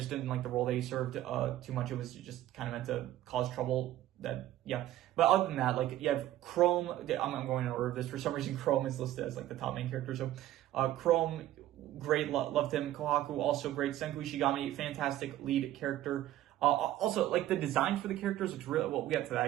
didn't like the role that he served too much. It was just kind of meant to cause trouble yeah. But other than that, like, you have Chrome. I'm going in order of this. For some reason, Chrome is listed as like the top main character. So, Chrome, great, loved him. Kohaku, also great. Senku Ishigami, fantastic lead character. Also, like, the design for the characters looks really well. We got to that, I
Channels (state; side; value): quieter; left; 13.9 dB